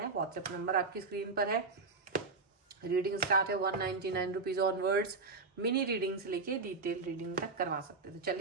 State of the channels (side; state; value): left; quieter; 4.1 dB